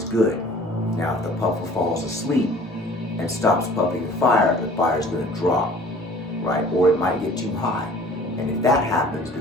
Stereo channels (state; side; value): normal; both; correlation 0.49